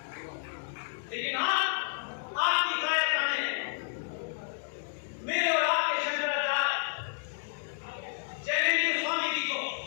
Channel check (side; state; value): right; silent; 57 dB below the other